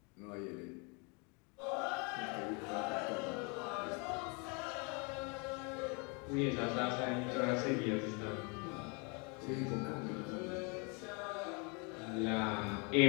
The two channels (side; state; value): right; quieter; 32.7 dB